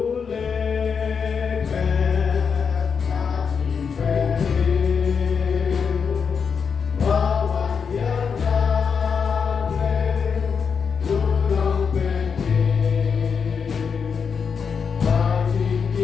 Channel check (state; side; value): quieter; right; 6.2 dB